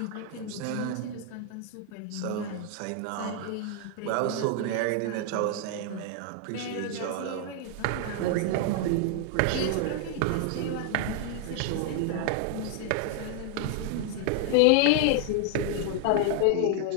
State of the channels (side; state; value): both; different; correlation 0.00